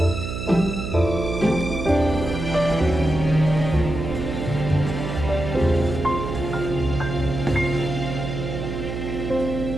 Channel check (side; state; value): right; noise; hum, 5 dB below the sound